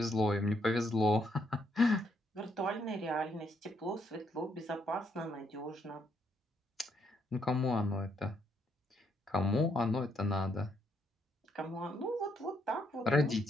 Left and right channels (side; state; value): both; normal; correlation 0.74